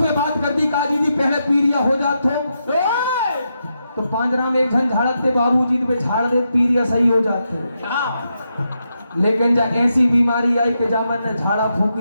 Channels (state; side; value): inverted; both; correlation -0.84